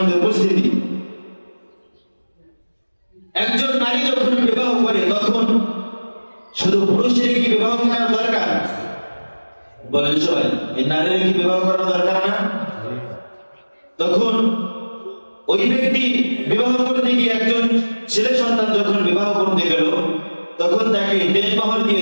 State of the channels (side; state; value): both; inverted; correlation -1.00